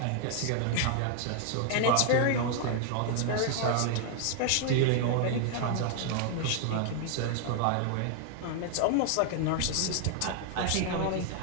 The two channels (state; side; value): different; both; correlation 0.00